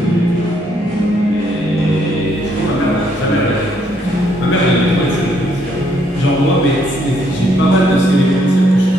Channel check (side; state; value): both; normal; correlation 0.71